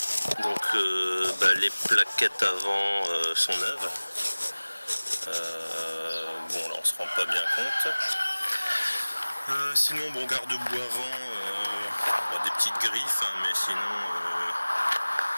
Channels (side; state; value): both; inverted; correlation -1.00